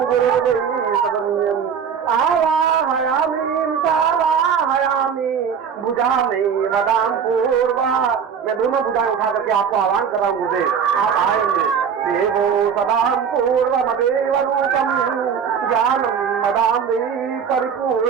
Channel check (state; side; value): quieter; left; 7.1 dB